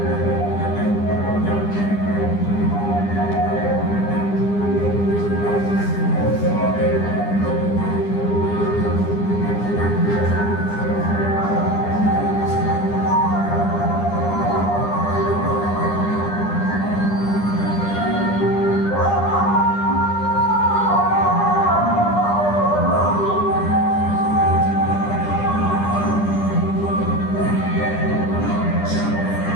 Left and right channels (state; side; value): late; right; 9.9 ms